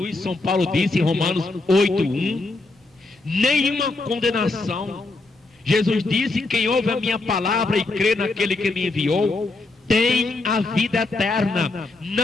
São Paulo disse em Romanos 8:1. Nenhuma condenação. Jesus disse: quem ouve a minha palavra e crê naquele que me enviou, tem a vida eterna.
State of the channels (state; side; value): quieter; right; 3.2 dB